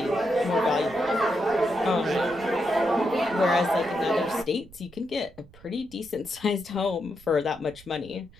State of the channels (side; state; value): right; noise; rumble, 23 dB below the sound